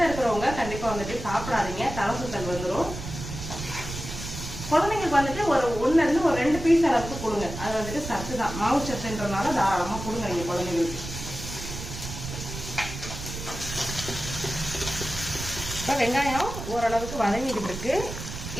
இருக்கிறவங்க கண்டிப்பாக வந்துட்டு சாப்பிடாதீங்க, தலை சுத்தல் வந்துடும். குழந்தைங்களுக்கு வந்துட்டு ஒரு 1 இருந்து ஒரு 2 பீஸ் அளவுக்கு கொடுங்க. அது வந்துட்டு சத்து தான், மாவு சத்துன்றதுனால தாராளமாக கொடுங்க நீங்கள் குழந்தைங்களுக்கு. இப்போ வெங்காயம் ஓரளவுக்கு வதங்கிக்கிட்டு இருக்கு.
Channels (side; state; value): right; noise; rumble, 8 dB below the sound